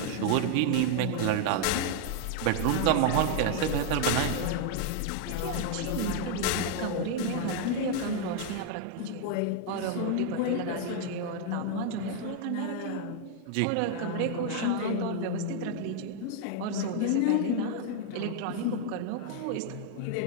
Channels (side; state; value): both; different; correlation 0.00